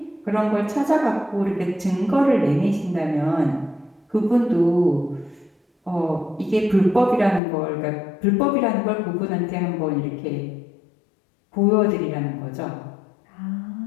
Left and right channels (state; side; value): drops out; right; at 7.4 s